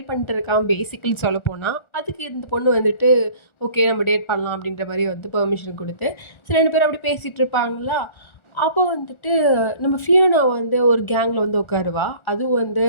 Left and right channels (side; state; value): right; late; 1.4 ms